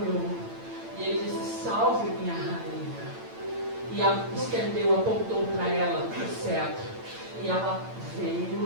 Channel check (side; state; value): left; late; 8.9 ms